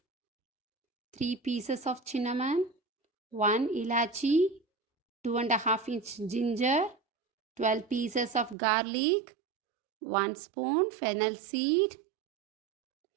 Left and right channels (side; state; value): left; drops out; at 8.6 s